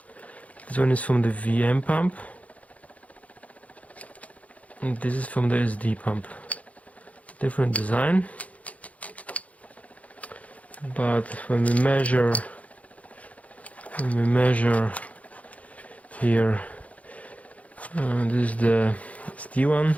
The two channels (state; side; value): late; right; 0.068 ms